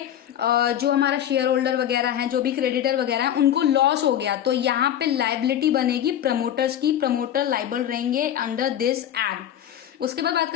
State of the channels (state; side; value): quieter; right; 10.7 dB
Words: जो हमारा शेयर होल्डर वगैरह है, जो भी क्रेडिटर वगैरह है, उनको लॉस हो गया। तो यहाँ पे लाइबिलिटी बनेगी प्रमोटर्स की, प्रमोटर लाइबल रहेंगे अंडर दिस एक्ट। उसके बाद बात